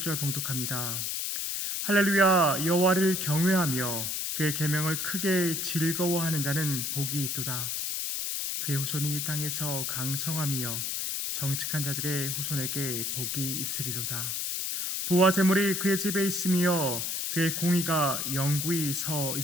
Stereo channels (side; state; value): left; noise; hiss, 1 dB below the sound